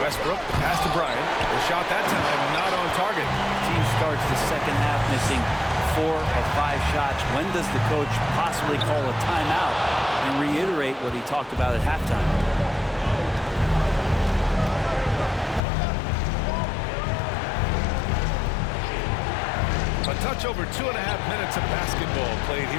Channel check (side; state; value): right; drops out; at 15.6 s